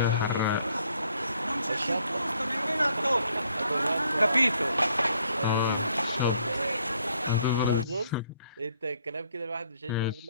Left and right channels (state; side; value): inverted; both; correlation -0.67